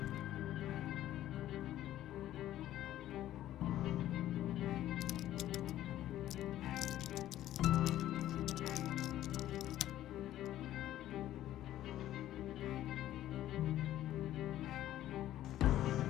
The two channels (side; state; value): right; quieter; 13.2 dB